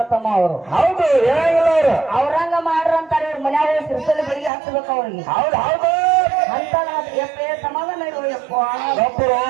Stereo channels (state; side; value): drops out; left; at 4.5 s